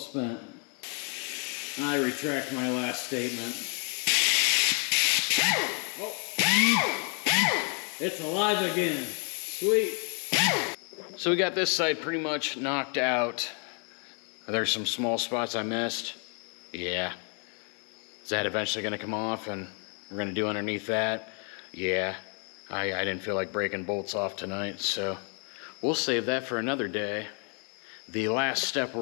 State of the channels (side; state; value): right; quieter; 39.0 dB